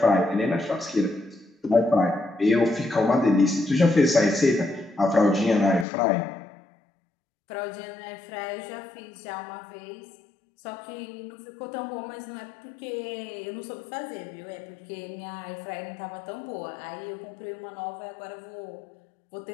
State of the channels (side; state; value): right; drops out; at 5.9 s